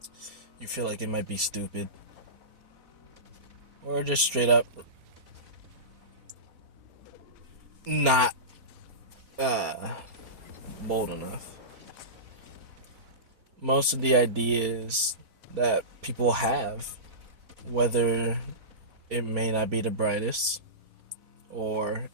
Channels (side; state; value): left; late; 4.3 ms